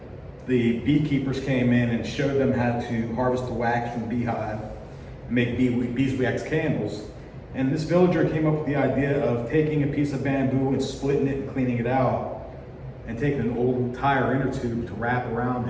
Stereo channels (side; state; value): both; identical; correlation 1.00